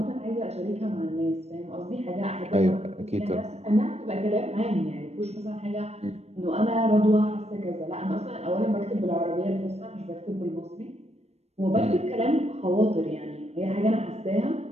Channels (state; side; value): late; left; 0.31 ms